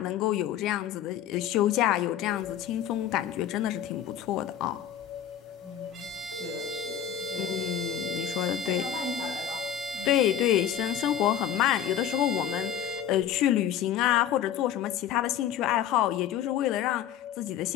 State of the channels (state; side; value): quieter; right; 10.0 dB